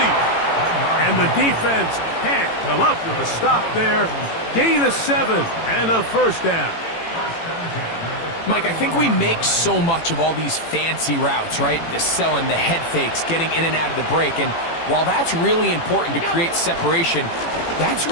And the defense can't come up with a stop there. Gain of 7 and a 1st down. Mike, I think we make so much of all these fancy routes, right? The selling, the head fakes, getting in and out of the break. And while that's really important to create separation, that's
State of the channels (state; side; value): late; right; 18 ms